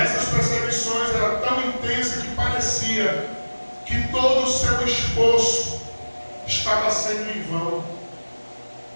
perseguições eram tão intensas que parecia que todo o seu esforço estava sendo em vão.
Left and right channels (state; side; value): inverted; both; correlation -1.00